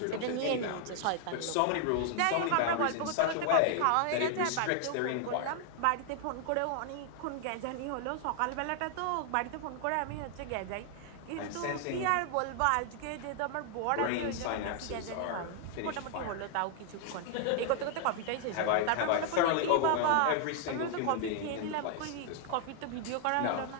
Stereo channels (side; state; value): both; different; correlation 0.00